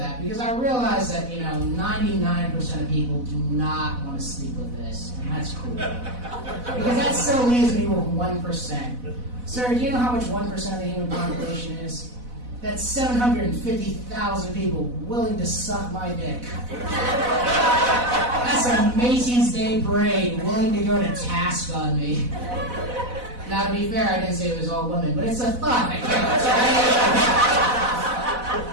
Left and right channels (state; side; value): late; left; 4.0 ms